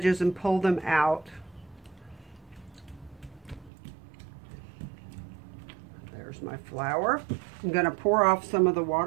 and pull them out. There's my flour. I'm going to pour off some of the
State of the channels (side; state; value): left; drops out; at 3.7 s